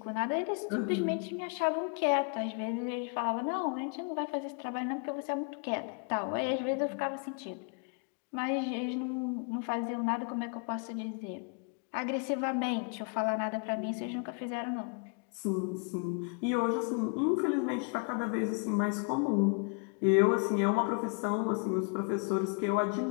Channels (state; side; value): quieter; right; 37.1 dB